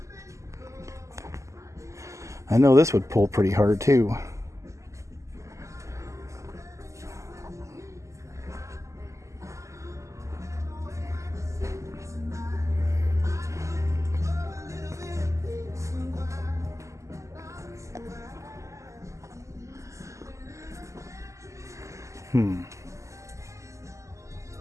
I know this would pull pretty hard too.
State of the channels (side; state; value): left; late; 0.15 ms